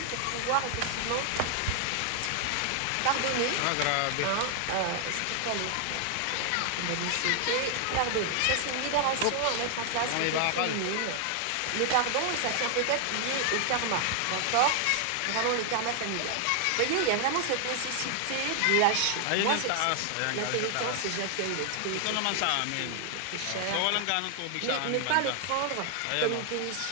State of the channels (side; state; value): both; different; correlation 0.00